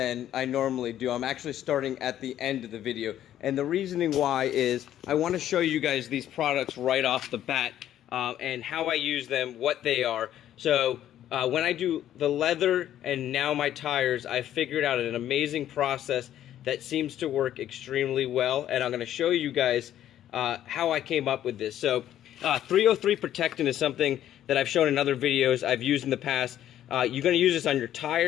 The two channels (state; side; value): quieter; right; 11.6 dB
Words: I normally do. I'm actually starting at the end of the video, and the reasoning why is I want to show you guys these products right off the bat, and how I use them, what they are. So when I do the leather and now my tires, I figured out an amazing process that seems to work extremely well, and I'm going to show you guys how I came up with this. So 303 protectant is something that I've shown in other videos I've used in the past. You're going to use this on your